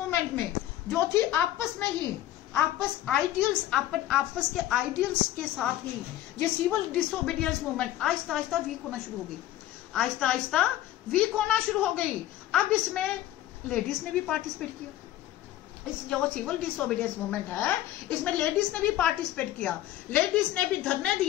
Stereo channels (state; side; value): quieter; right; 13.7 dB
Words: में जो थी आपस में ही आपस के आइडियल्स के साथ ही ये civil disobedience movement Aahista Aahista week होना शुरू हो गई, आहिस्ता आहिस्ता वीक होना शुरू हो गई। अब इसमें लेडीज ने भी पार्टिसिपेट किया। इस जो सिविल डिसोबीडियंस मूवमेंट है इसमें लेडीज ने भी पार्टिसिपेट किया, लेडीज ने भी धरने